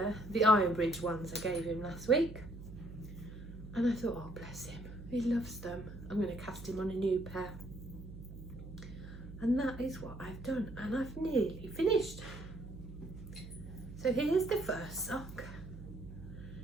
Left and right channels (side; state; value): right; noise; hum, 13 dB below the sound